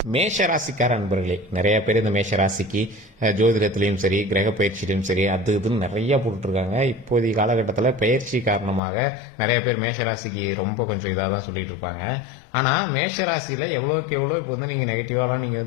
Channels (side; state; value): right; drops out; at 8.8 s